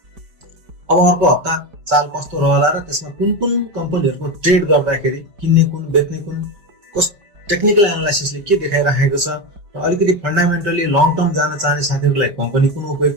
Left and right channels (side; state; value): left; late; 5.1 ms